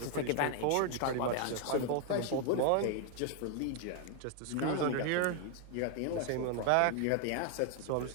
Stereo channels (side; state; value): both; different; correlation 0.00